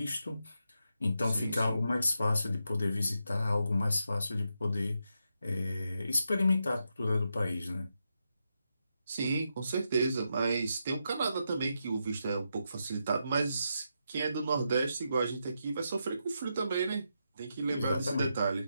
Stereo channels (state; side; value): inverted; both; correlation -0.84